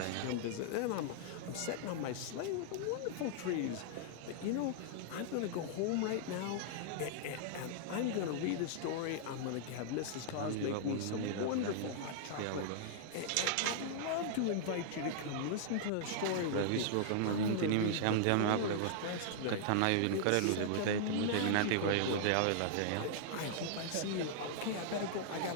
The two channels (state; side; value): different; both; correlation -0.01